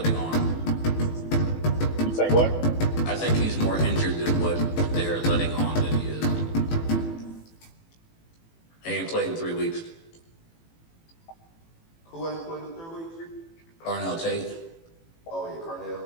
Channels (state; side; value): late; right; 18 ms